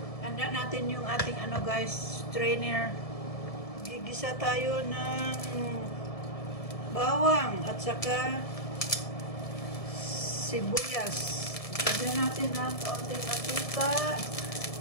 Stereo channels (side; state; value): right; late; 1.7 ms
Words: Handa natin yung ating guys, strainer. Gigisa tayo ng bawang at saka sibuyas. Lagyan natin ng kaunting mantika.